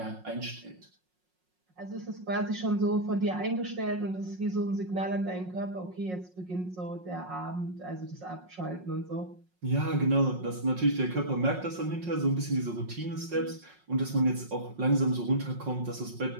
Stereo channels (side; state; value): left; late; 5.5 ms